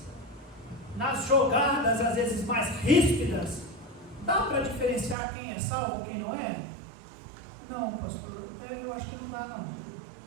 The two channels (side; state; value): left; drops out; at 5.2 s